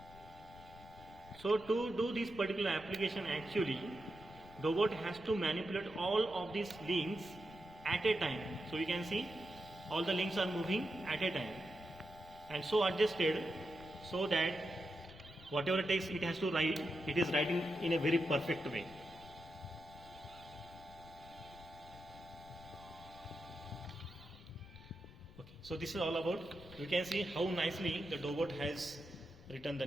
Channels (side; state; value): left; noise; rumble, 19 dB below the sound